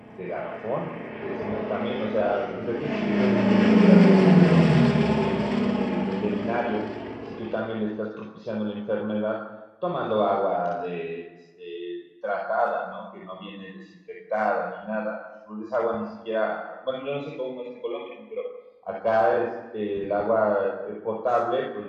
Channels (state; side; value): identical; both; correlation 1.00